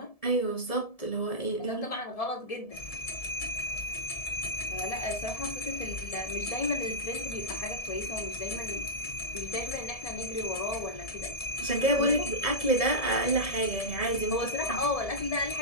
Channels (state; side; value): late; right; 1.7 ms